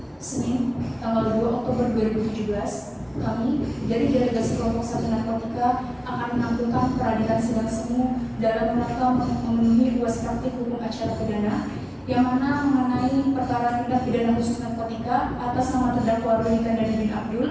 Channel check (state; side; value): identical; both; correlation 1.00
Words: Senin, tanggal 2 Oktober 2017, kami dari Delegasi Kelompok 1 Narkotika akan menampilkan peradilan sidang semu dalam rangka memenuhi UAS praktik hukum acara pidana yang mana mengenai perkara tindak pidana khusus narkotika atas nama terdakwa Rudy Kandani bin